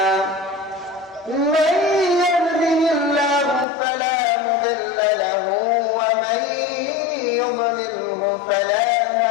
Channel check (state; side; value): drops out; right; at 3.7 s